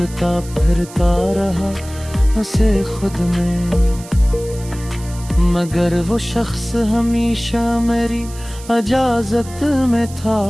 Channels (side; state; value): right; noise; hiss, 18 dB below the sound